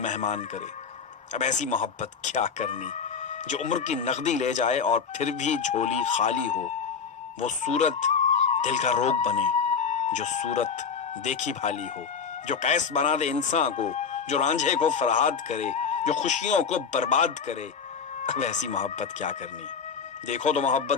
کرے۔ اب ایسی محبت کیا کرنی جو عمر کی نقدی لے جائے اور پھر بھی جھولی خالی ہو، وہ صورت دل کا روگ بنے جو صورت دیکھی بھالی ہو، جو قیس بنا دے انسان کو، جو رانجھے کو فرہاد کرے، جو خوشیوں کو برباد کرے۔ اب ایسی محبت کیا کرنی؟ دیکھو تو محبت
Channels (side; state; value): right; quieter; 6.2 dB